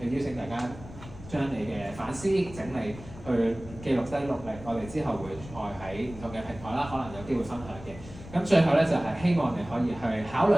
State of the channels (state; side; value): noise; left; rumble, 15 dB below the sound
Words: 邀請大家將你嘅反思整理。去記錄低落嚟，我哋之後會再喺唔同嘅平台啦，可能有機會分享嘅。咁最後咧就係、希望你可以去考